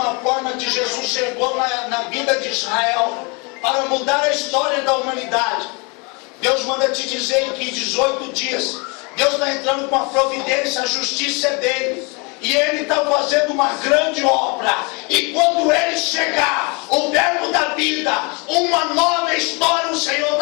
forma que Jesus chegou na vida de Israel para mudar a história da humanidade, Deus manda te dizer que em 18 dias Deus está entrando com a providência, a justiça é dele, e ele está fazendo uma grande obra. E quando ele chegar, o verbo da vida, uma nova história o Senhor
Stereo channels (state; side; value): quieter; right; 30.7 dB